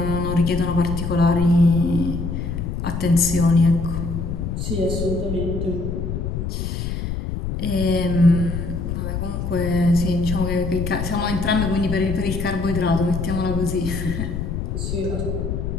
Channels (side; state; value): left; noise; rumble, 3 dB below the sound